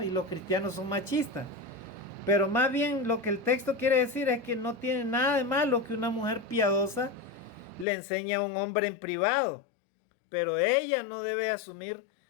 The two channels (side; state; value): right; drops out; at 7.9 s